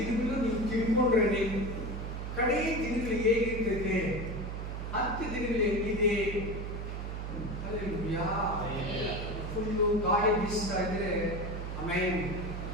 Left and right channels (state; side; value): noise; right; hum, 5 dB below the sound